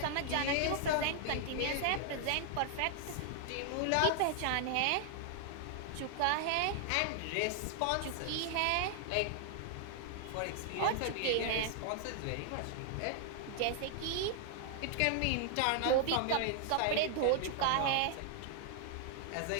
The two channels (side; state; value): both; different; correlation 0.00